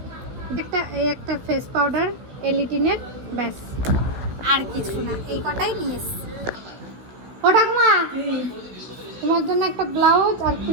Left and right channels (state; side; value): late; left; 16 ms